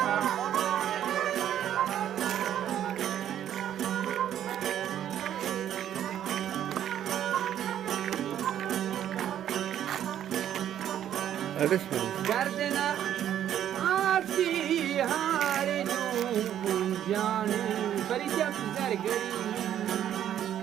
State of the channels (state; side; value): quieter; left; 10.7 dB